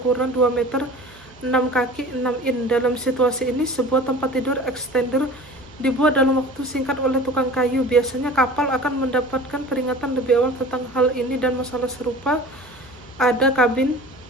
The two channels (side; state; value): right; noise; hum, 27 dB below the sound